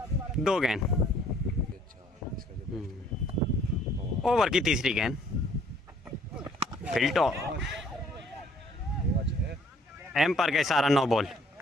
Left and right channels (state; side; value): normal; both; correlation 0.60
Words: 2 गेंद। ओवर की तीसरी गेंद। फिल्टो एम्पायर का इशारा 9 बॉल।